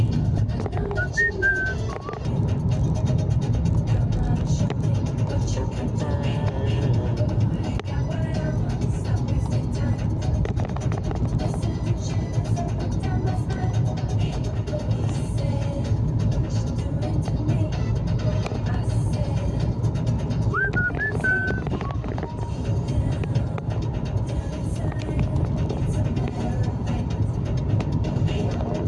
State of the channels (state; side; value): identical; both; correlation 1.00